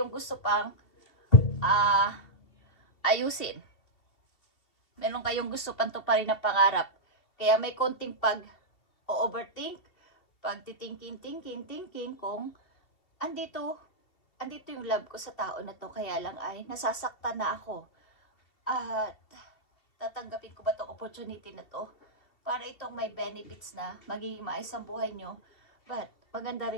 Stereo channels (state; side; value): late; right; 2.7 ms